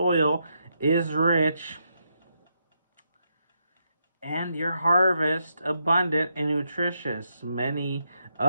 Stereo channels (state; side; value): inverted; both; correlation -0.81